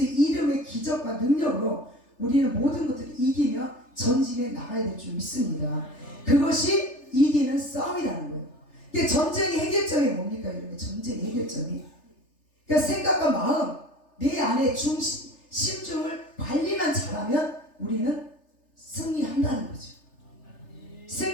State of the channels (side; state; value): right; late; 3.3 ms